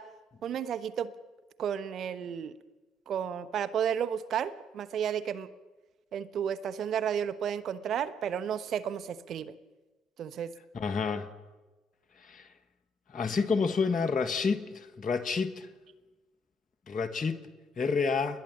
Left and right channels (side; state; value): both; normal; correlation 0.68